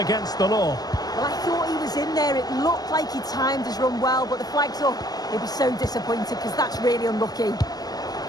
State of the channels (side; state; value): right; late; 0.19 ms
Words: the law. Well, I thought he was in there. It looked like he timed his run well, but the flag's up. He'll be so disappointed because that's really unlucky.